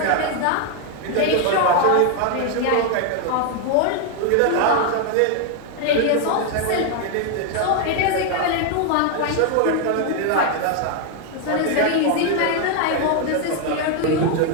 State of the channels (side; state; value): both; different; correlation 0.01